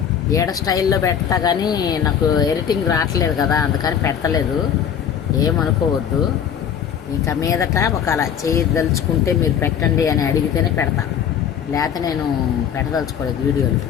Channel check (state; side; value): quieter; right; 8.5 dB